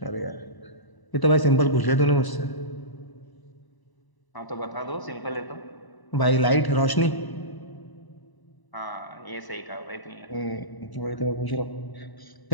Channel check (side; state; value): right; late; 1.0 ms